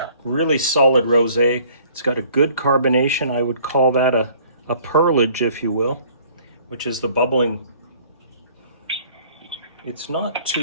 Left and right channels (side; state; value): both; inverted; correlation -0.55